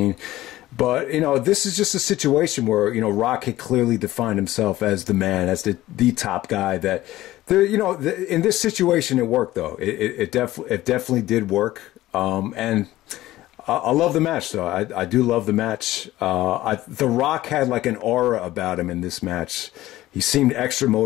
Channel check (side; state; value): right; quieter; 15.9 dB